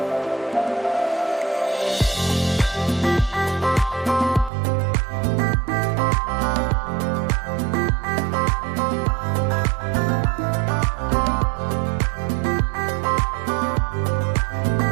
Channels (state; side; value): drops out; left; at 4.5 s